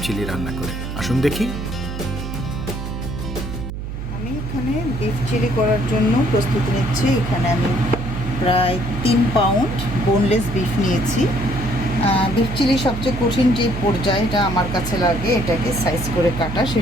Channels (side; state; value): right; noise; hum, 7 dB below the sound